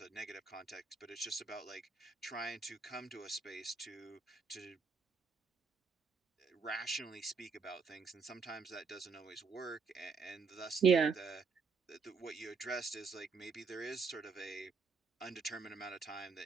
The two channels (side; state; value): left; quieter; 5.1 dB